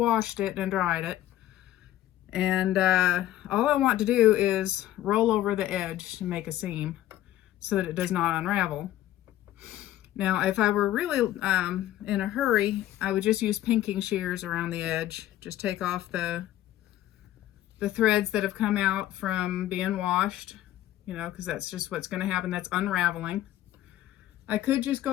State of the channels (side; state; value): right; quieter; 13.6 dB